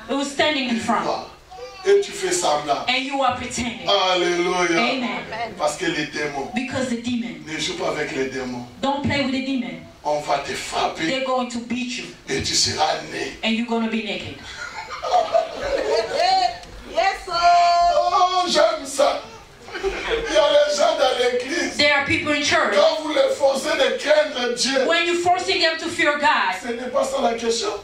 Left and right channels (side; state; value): both; identical; correlation 1.00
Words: who's standing in front. And you are pretending. Alléluia. Amen. Parce que les démons. Because the demon. Ne joue pas avec les démons. Don't play with the demon. On va te frapper. They're going to beat you. Et tu seras né. And you're going to be naked. Yes, oh, j'aime ça. Il y a les gens dans l'église. There are people in church. Quand vous les forcez de craindre Dieu. When you're forcing them to fear God. Ce n'est pas ça la question.